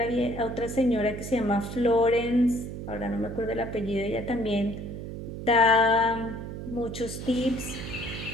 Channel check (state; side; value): noise; right; hum, 8 dB below the sound